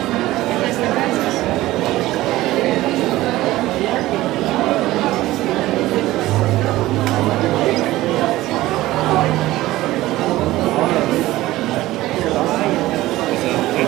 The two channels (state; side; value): quieter; left; 16.9 dB